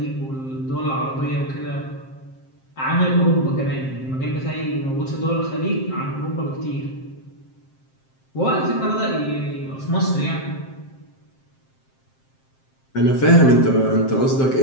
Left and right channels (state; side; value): late; right; 7.6 ms